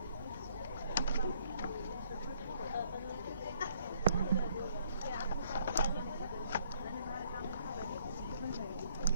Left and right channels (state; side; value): inverted; both; correlation -0.65